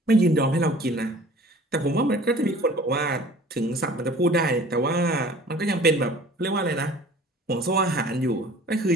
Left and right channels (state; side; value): normal; both; correlation 0.47